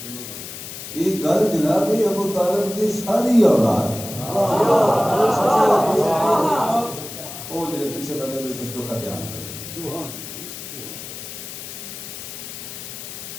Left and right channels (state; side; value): noise; left; hiss, 10 dB below the sound